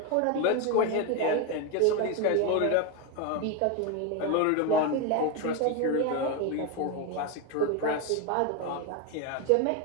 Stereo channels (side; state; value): both; different; correlation 0.02